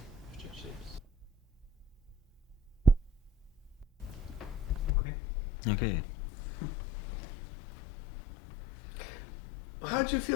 Okay. How'd you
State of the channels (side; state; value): right; drops out; at 4.9 s